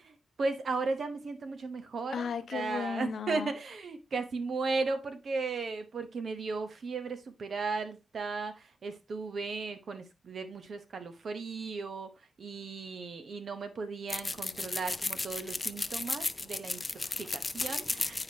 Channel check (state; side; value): normal; both; correlation 0.85